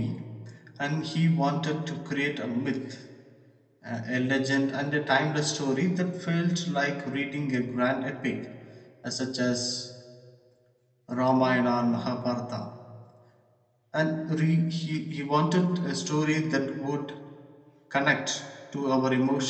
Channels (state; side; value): identical; both; correlation 1.00